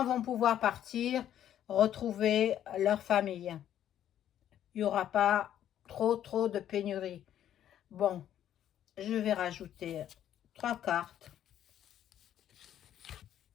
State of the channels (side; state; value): right; quieter; 10.9 dB